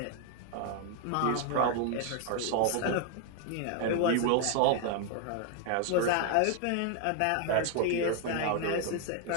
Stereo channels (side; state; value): both; different; correlation 0.00